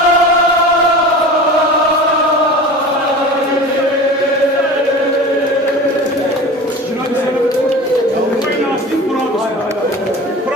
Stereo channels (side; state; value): both; normal; correlation 0.35